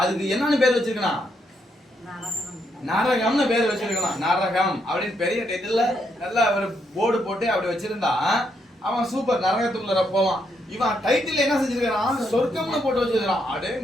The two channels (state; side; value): normal; both; correlation 0.77